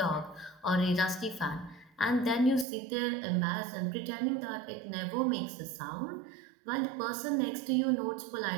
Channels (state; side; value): drops out; left; at 2.7 s